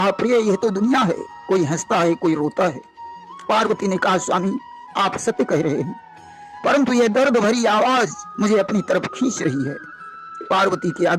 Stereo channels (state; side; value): identical; both; correlation 1.00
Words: प्रिय, यह तो दुनिया है, कोई हंसता है, कोई रोता है। पार्वती ने कहा, स्वामी, आप सत्य कह रहे हैं, परंतु यह दर्द भरी आवाज मुझे अपनी तरफ खींच रही है। पार्वती के